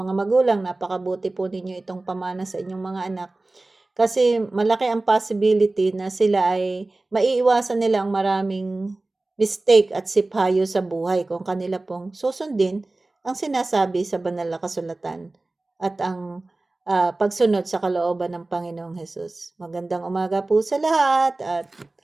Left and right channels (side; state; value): left; quieter; 3.0 dB